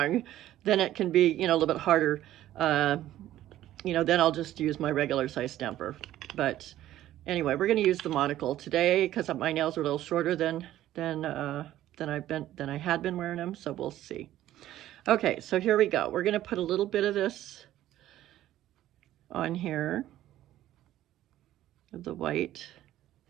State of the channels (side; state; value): left; quieter; 13.5 dB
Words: then it can be, a little bit harder. Then I'll just use my regular size stamper. But anyway, we're going to use the monocle today because my nails are a little shorter than I had been wearing them. So we'll see. Okay, so here we go. We're going to put a little bit of this on here of the white.